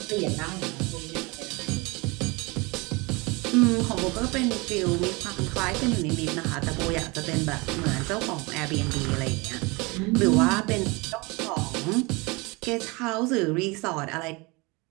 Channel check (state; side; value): quieter; left; 26.1 dB